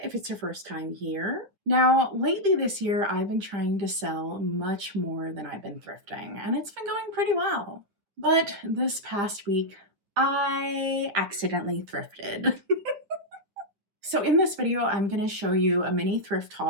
if it's your first time here. Now, lately this year, I've been trying to sell much more than I've been thrifting, and it's been going pretty well. But this past week, I accidentally thrifted. So in this video, I'm going to show you a mini thrift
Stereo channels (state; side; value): late; left; 9.7 ms